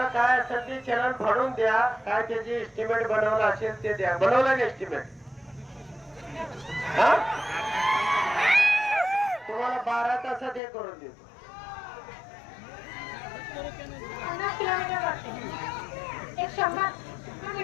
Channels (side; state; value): right; drops out; at 10.6 s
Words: काय असेल ते चॅनल फाडून द्या, काय त्याची एस्टिमेट बनवलं असेल ते द्या. बनवलं एस्टिमेट तुम्हाला 12 तासात हे करून देतो.